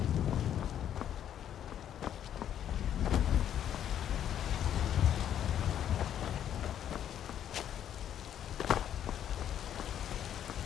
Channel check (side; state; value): right; quieter; 10.1 dB